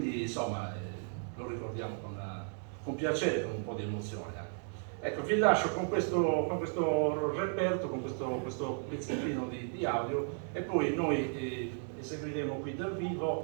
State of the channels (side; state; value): left; silent; 55 dB below the other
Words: insomma lo ricordiamo con piacere, con un po' di emozione anche. Ecco, vi lascio con questo reperto, con questo pezzettino di audio, e poi noi eseguiremo qui dal